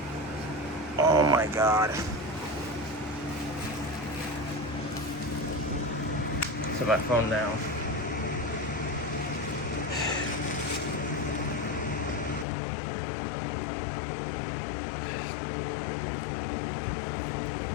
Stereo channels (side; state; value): right; drops out; at 12.5 s